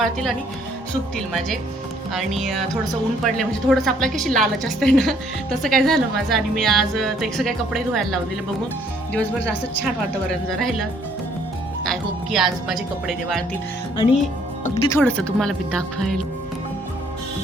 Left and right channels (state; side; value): normal; both; correlation 0.64